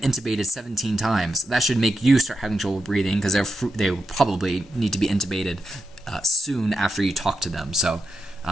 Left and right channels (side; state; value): both; normal; correlation 0.87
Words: 17 times. That should make you start having trouble breathing, because they will probably need to be intubated soon after you talk to them. So